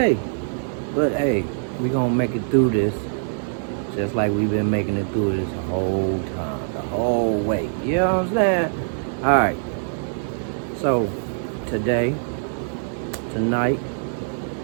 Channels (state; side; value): silent; left; digital silence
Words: But hey, we gonna make it through this. Just like we've been making it through this the whole time, the whole way. You know what I'm saying? Alright. So, tonight,